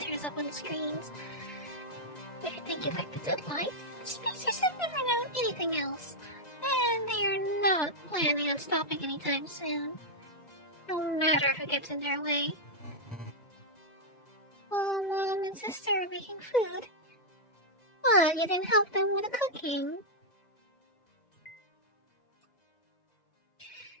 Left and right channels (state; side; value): late; right; 2.0 ms